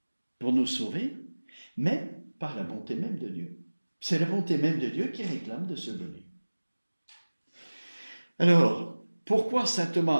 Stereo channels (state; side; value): inverted; both; correlation -1.00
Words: pour nous sauver, mais par la bonté même de Dieu. C'est la bonté même de Dieu qui réclame de se donner. Alors, pourquoi saint